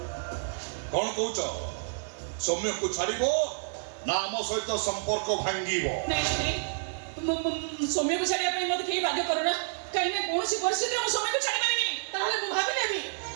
कौन कौच सौम्य को छाड़ ना आम सहित संपर्क भांगी सौम्य को छाड़िया मत कहीं बाध्य करना कहीं ना कौन परिस्थिति में सौम्य को छाड़ी पारिनी ताहले मु भाबिलेबी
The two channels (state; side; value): silent; left; digital silence